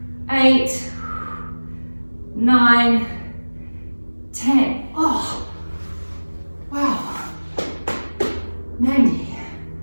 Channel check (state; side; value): inverted; both; correlation -1.00